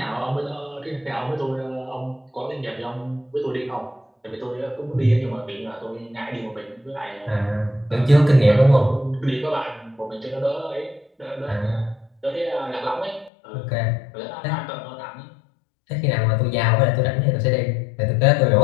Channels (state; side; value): drops out; right; at 13.3 s